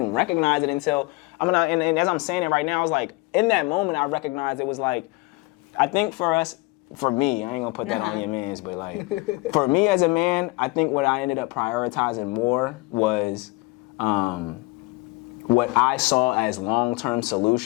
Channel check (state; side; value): quieter; right; 24.1 dB